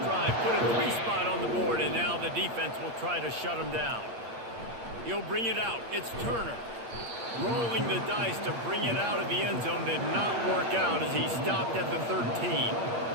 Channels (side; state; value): left; late; 8.5 ms